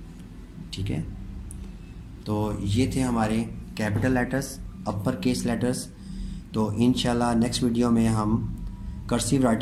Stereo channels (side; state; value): both; identical; correlation 1.00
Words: ठीक है, तो ये थे हमारे capital letters, upper case letters. तो इंशाल्लाह नेक्स्ट वीडियो में हम कर्सिव